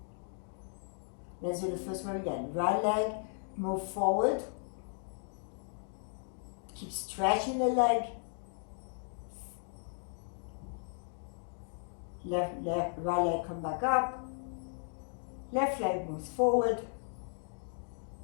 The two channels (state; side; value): silent; right; 54 dB below the other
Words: Let's do the first one again. Right leg. Move forward. Keep stretching the leg. Right leg come back up. Left leg moves forward.